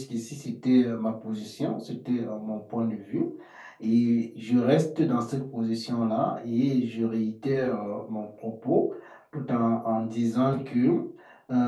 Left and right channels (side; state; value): both; identical; correlation 1.00